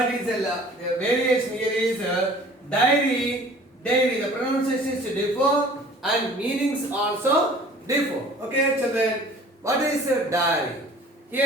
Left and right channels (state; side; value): normal; both; correlation 0.48